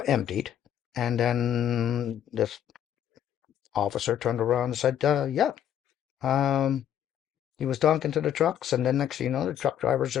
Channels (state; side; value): quieter; right; 10.1 dB